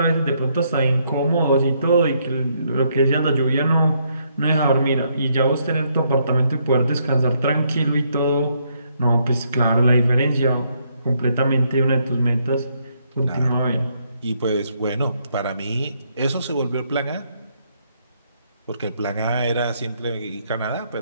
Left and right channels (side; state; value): both; inverted; correlation -0.73